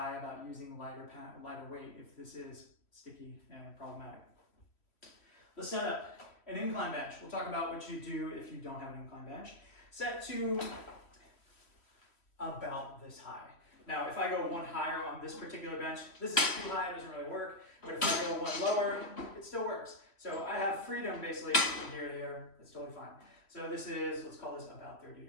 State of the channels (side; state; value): right; late; 2.9 ms